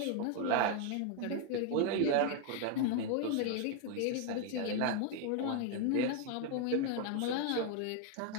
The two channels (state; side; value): different; both; correlation 0.01